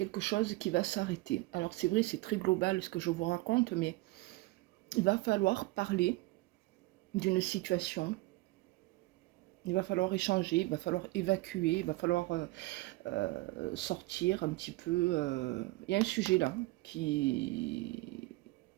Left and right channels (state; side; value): quieter; left; 20.5 dB